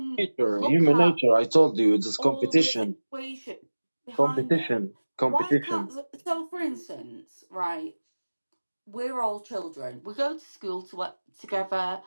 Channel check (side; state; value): both; inverted; correlation -1.00